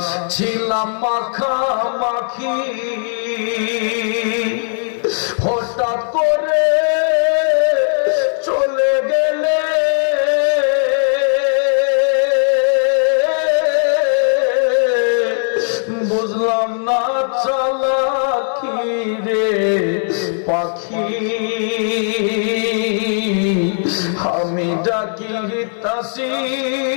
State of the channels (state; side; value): silent; right; digital silence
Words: ছিলাম মাখামাখি, হঠাৎ করে চলে গেলে বুঝলাম না চালাকি রে পাখি, আমি ডাকিতাছি